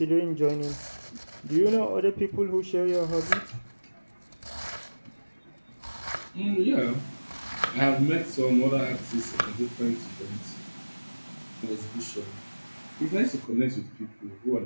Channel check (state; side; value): inverted; both; correlation -1.00